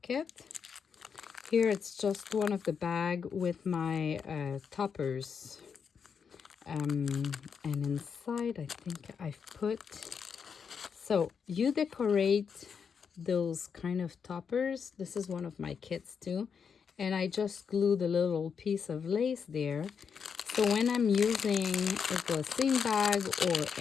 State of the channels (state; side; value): quieter; right; 6.5 dB